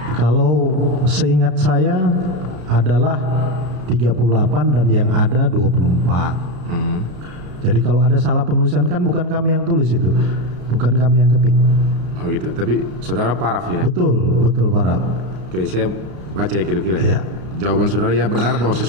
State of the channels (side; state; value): left; late; 32 ms